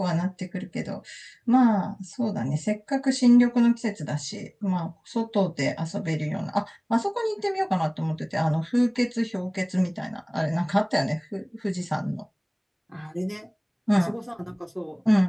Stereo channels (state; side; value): identical; both; correlation 1.00